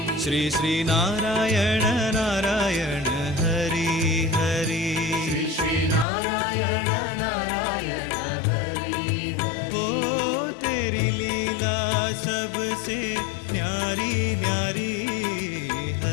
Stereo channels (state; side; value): drops out; right; at 6.1 s